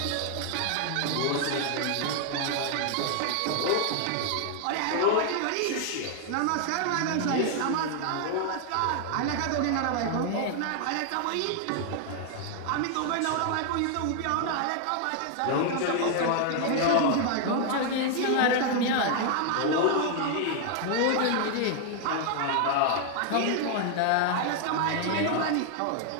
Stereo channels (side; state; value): both; different; correlation 0.00